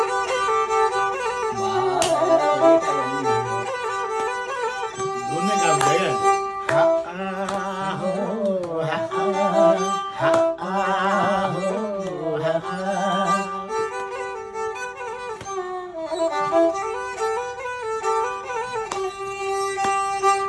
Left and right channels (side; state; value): both; identical; correlation 1.00